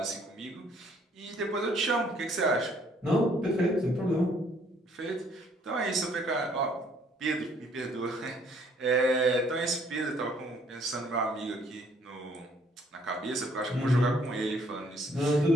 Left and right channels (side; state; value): both; normal; correlation 0.63